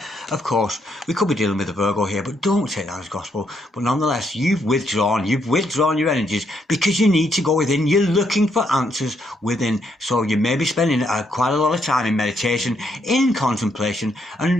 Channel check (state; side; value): normal; both; correlation 0.75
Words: Of course, we could be dealing with a Virgo here, but don't take that as gospel. But nonetheless, you've withdrawn your energies because you need to go within. You're looking for answers within. So you may be spending quite a lot of time in meditation, in contemplation,